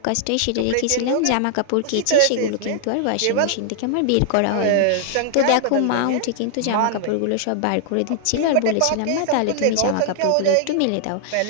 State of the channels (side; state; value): both; different; correlation -0.01